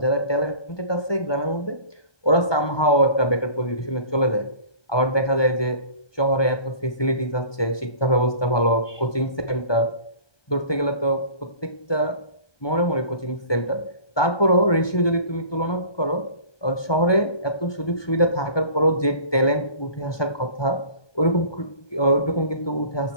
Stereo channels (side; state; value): right; late; 1.2 ms